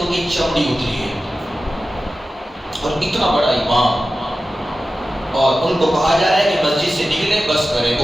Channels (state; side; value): normal; both; correlation 0.94